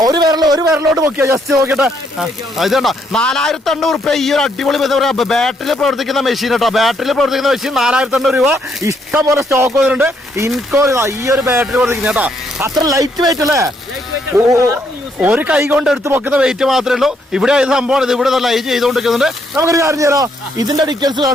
ഒരു വിരലോട്ട് നോക്കിയാ. ജസ്റ്റ് നോക്കിട്ടെ, ഇതുണ്ടോ 4800 രൂപ ഈ ഒരു അടിപൊളി ബാറ്ററിയിൽ പ്രവർത്തിക്കുന്ന മെഷീൻ കേട്ടോ. ബാറ്ററിയിൽ പ്രവർത്തിക്കുന്ന മെഷീൻ 4800 രൂപ. ഇഷ്ടം പോലെ സ്റ്റോക്ക് വന്നിട്ടുണ്ട്. ഇൻകോ ഈ ഒരു ബാറ്ററി പ്രവർത്തിക്കുന്ന കേട്ടോ. അത്ര ലൈറ്റ് വെയിറ്റ് അല്ലേ? ഒരു കൈ കൊണ്ട് എടുത്ത് പൊക്കുന്ന വെയിറ്റ് മാത്രമേ ഉള്ളൂ. ഇവിടെ ഇത് സംഭവം ഇത് ഇവിടെ ലൈറ്റ് ചെയ്തുകൊണ്ടിരിക്കുന്നുണ്ട്. നമുക്കൊരു കാര്യം ചെയ്യാം, ഇതിന്റെ ഡീറ്റെയിൽസ്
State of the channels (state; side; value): normal; both; correlation 0.73